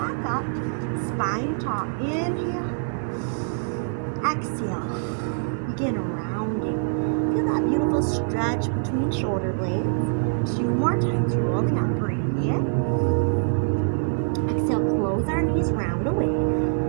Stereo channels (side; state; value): left; silent; digital silence